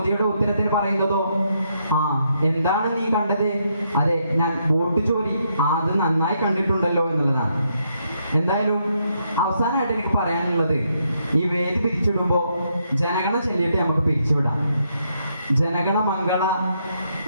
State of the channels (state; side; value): inverted; both; correlation -0.77